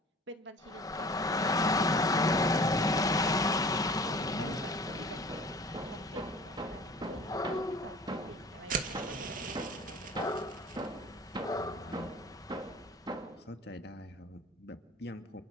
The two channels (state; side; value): normal; both; correlation 0.45